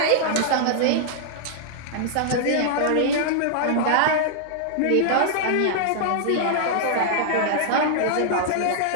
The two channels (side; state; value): both; different; correlation -0.01